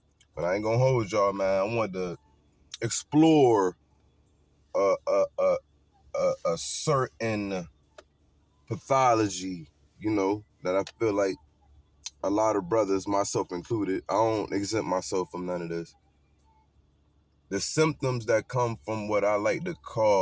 But I ain't gonna hold y'all, man. I want to explore a certain pathology, that I feel like a lot of brothers, myself included, I don't exempt myself from none of this. The symptoms that come from what I like to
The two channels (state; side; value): identical; both; correlation 1.00